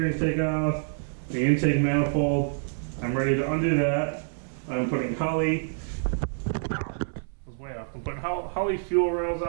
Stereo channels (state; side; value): silent; left; 60 dB below the other